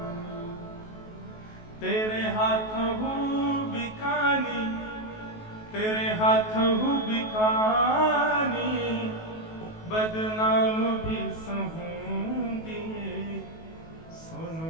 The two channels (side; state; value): right; late; 19 ms